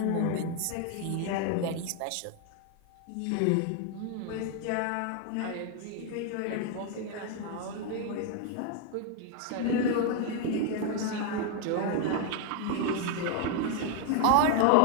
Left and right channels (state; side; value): different; both; correlation 0.00